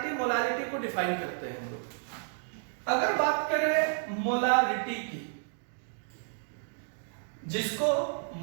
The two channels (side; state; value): left; silent; 57 dB below the other